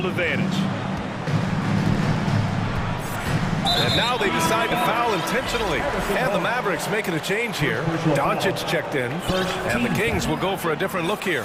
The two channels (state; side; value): identical; both; correlation 1.00